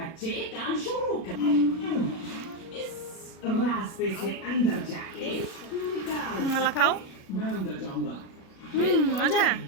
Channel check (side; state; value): right; late; 37 ms